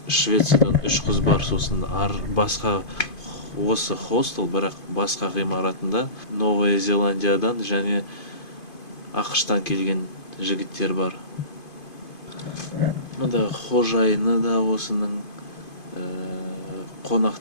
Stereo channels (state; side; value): late; right; 2.5 ms